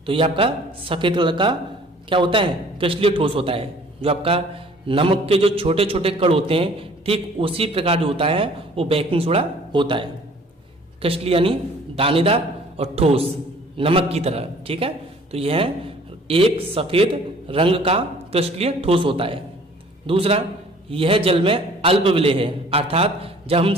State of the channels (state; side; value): normal; both; correlation 0.53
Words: तो ये आपका सफ़ेद कलर का क्या होता है, क्रिस्टलीय ठोस होता है। जो आपका नमक के जो छोटे छोटे कण होते हैं, ठीक उसी प्रकार जो होता है वो बेकिंग सोडा होता है। क्रिस्टलीय यानी दानेदार और ठोस, नमक की तरह, ठीक है। तो यह एक सफ़ेद रंग का क्रिस्टलीय ठोस होता है। दूसरा, यह जल में अल्प विलय है, अर्थात जब हम